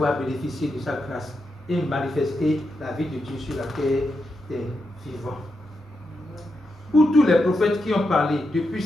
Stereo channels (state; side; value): normal; both; correlation 0.85